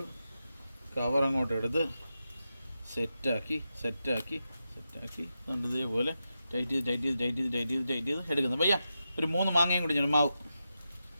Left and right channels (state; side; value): inverted; both; correlation -0.89